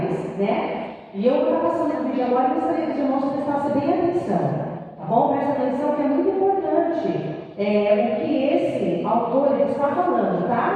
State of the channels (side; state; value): both; identical; correlation 1.00